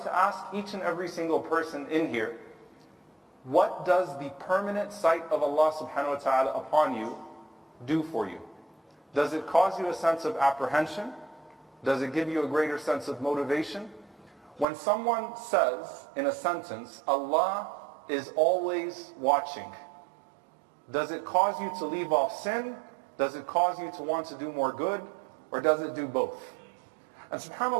ask each and every single person in here, what does the permanent sight of Allah subhanahu wa ta'ala upon you do for you? Does it cause you a sense of apprehension? Does it give you a greater sense of motivation? When someone says in a sentence, Allah is always watching, does it cause you to leave off sin? Does it cause you to want to do more good? Or does it do both? And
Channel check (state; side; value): drops out; left; at 14.7 s